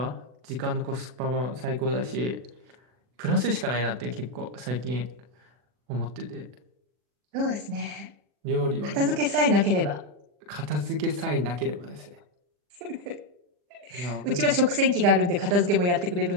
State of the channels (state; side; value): late; left; 40 ms